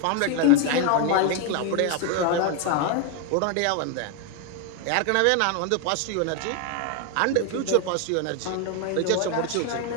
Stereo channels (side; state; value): both; different; correlation 0.01